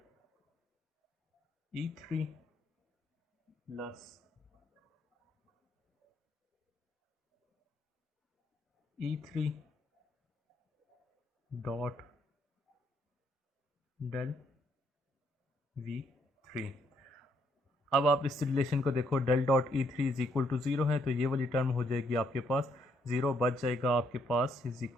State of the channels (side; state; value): both; normal; correlation 0.72